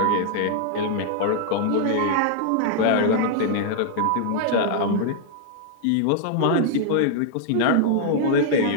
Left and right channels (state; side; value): different; both; correlation -0.01